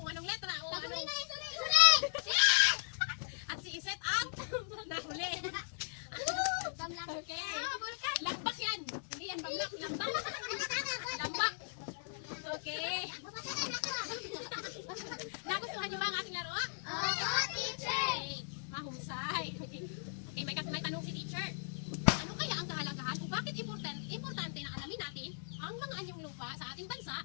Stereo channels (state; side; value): silent; right; digital silence